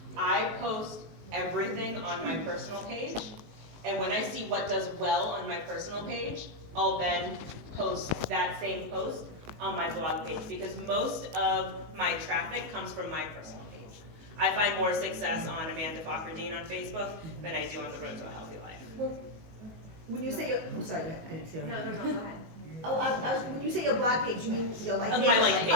I post everything on my personal page, and when I see what does well on my personal page, I'll then post that same post on my blog page, because most of my traffic comes from my personal page. I find more success on Amanda Fakhreddine on Facebook than I do on The Road to a Healthy Life. Well, when you say, I'm sorry, go ahead. I didn't see it. No, go ahead. Oh, when you say your blog page, you mean your like page? My like page.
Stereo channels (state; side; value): late; left; 19 ms